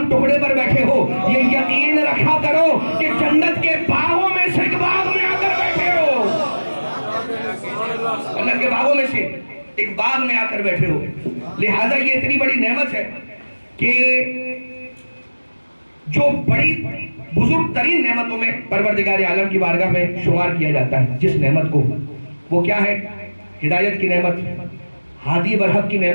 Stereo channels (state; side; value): inverted; both; correlation -1.00